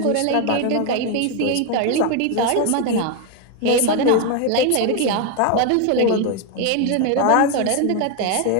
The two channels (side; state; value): both; different; correlation 0.01